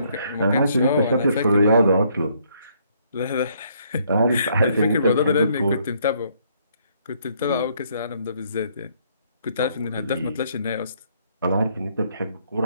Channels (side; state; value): both; inverted; correlation -0.68